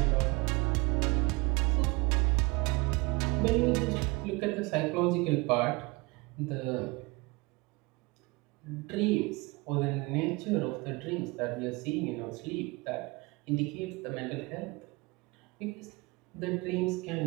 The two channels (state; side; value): quieter; left; 25.2 dB